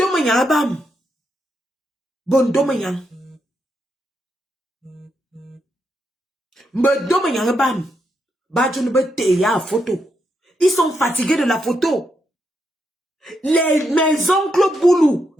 abam. Bondomayan. Bondomayan abam. Badjounbeteya photo. Ils sont fatigués de la photo. Mes oncles Boulou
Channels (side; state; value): both; normal; correlation 0.81